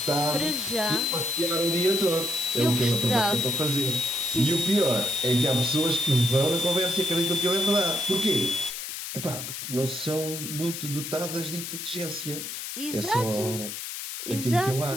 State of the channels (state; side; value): noise; left; hiss, 7 dB below the sound